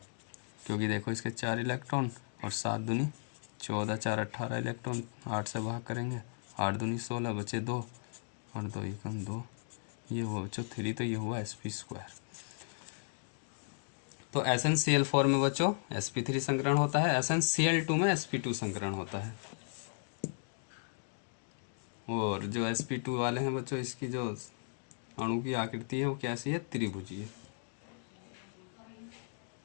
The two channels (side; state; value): right; silent; digital silence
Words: क्योंकि देखो इसके 4 इलेक्ट्रॉन और 7 दूनी 14, 4 18 इलेक्ट्रॉन, 8 से भाग करेंगे, 8 दूनी 16, बचे 2 और 2 एकम 2, ये हुआ बच्चों 3, तो ये हुआ sp2। तो SnCl4 में बच्चों sp3 संकरण होता है, SnCl2 में sp2 संकरण होता है। और जो sp2 वाले हैं बच्चों, इसकी जो अणु की आकृति है वो कैसी है, त्रिभुजीय।